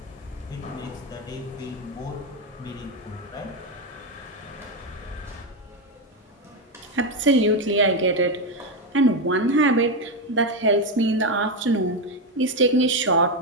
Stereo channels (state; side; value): normal; both; correlation 0.08